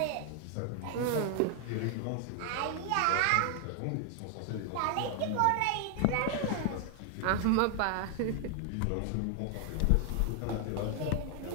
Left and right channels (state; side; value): different; both; correlation 0.00